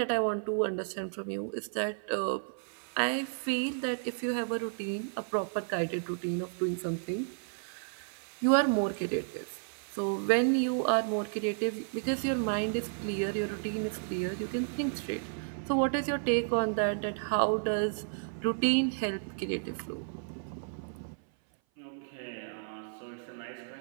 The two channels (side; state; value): left; silent; 56 dB below the other